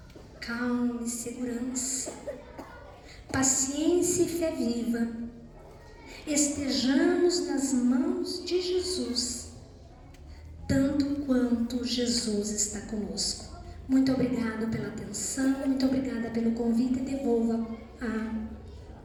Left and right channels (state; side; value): identical; both; correlation 1.00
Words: Calma e segurança, paciência e fé viva. Estejamos nas mãos de Jesus, tanto quanto Jesus está conosco. Muito obrigado pela atenção, muito obrigada pelo convite e devolvo